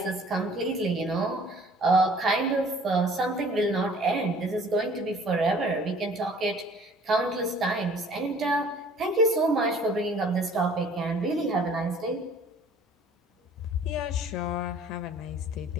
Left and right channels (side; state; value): both; normal; correlation 0.52